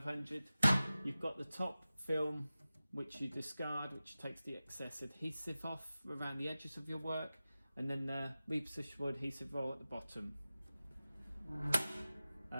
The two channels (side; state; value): both; inverted; correlation -0.96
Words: You've got the top film, which you discard, which takes the excess adhesive off around the edges of your work, and then the repositionable adhesive roll at the bottom.